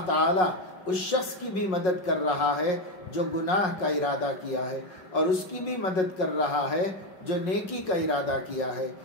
تعالیٰ اس شخص کی بھی مدد کر رہا ہے جو گناہ کا ارادہ کیا ہے، اور اس کی بھی مدد کر رہا ہے جو نیکی کا ارادہ کیا ہے،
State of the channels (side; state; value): right; late; 5.5 ms